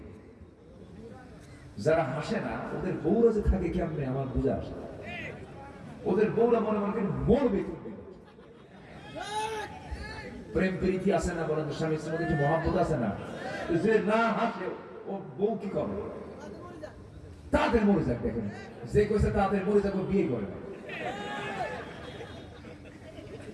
যারা হাসে না ওদের বউরা যে থাকে কেমনে আমার বুঝে আসে। ওদের বউরা মনে মনে মরবে। প্রেম প্রীতি আছে না? বলেন, স্বামী স্ত্রীর মধ্যে একটু মহব্বত আছে না? যে না হাসে ও বউ কি করবে? তাদের মরে যাক। দেখেন, যে কইছে তাদের মরে যাক, বিয়ে করে না।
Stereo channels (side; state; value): both; identical; correlation 1.00